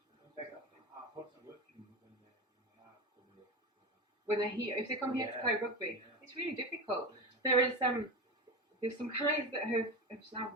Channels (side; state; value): both; normal; correlation 0.23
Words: very often. When they're here, if they come here to play rugby, it's really difficult. There's some guys that have now